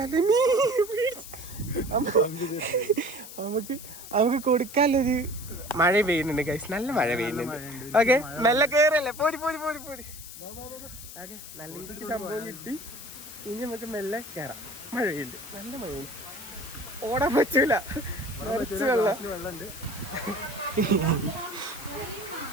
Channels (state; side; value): noise; left; hiss, 13 dB below the sound